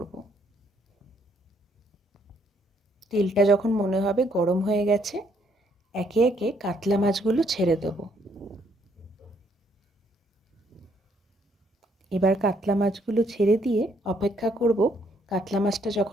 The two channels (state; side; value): normal; both; correlation 0.69